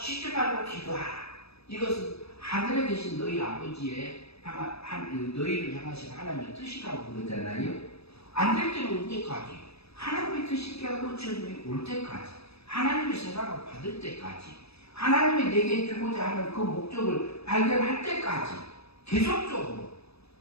말고 기도하라. 이것은 하늘에 계신 너희 아버지의 너희를 향하신 하나님의 뜻이라고 그러잖아요. 안 될 때는 언제까지? 하나님의 뜻이 깨어지게 올 때까지, 하나님의 사랑을 받을 때까지, 하나님이 내게 주고자 하는 그 목적을 발견할 때까지 계속적으로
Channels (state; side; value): late; right; 0.78 ms